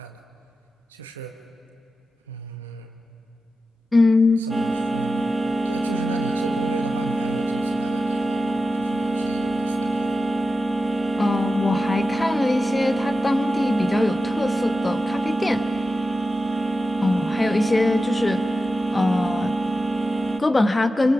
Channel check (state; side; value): normal; both; correlation 0.92